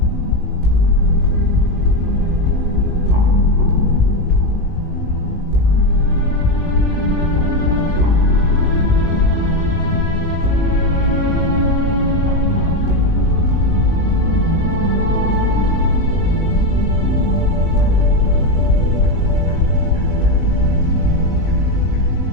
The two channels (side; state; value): left; late; 19 ms